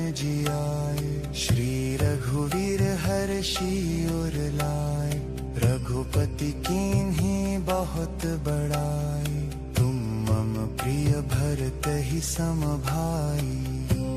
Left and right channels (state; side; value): identical; both; correlation 1.00